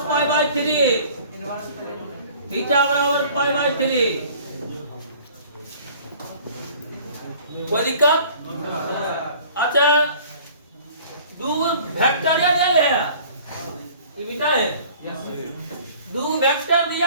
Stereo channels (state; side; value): inverted; both; correlation -0.50